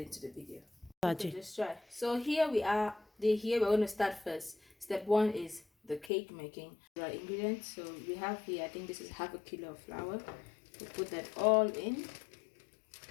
into the video. Okay, just try. So here we are. Here we're going to start first. Step one is the cake making. Dry ingredients. So we have here, I think this is half a kilo of flour. We'll put that all in.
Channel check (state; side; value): drops out; right; at 6.1 s